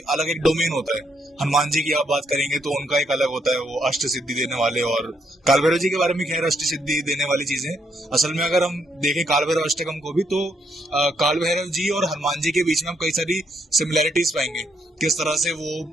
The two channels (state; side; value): normal; both; correlation 0.74